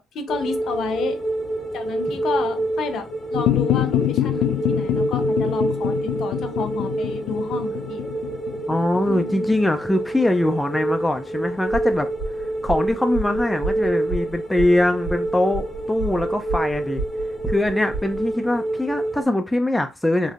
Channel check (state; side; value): normal; both; correlation 0.83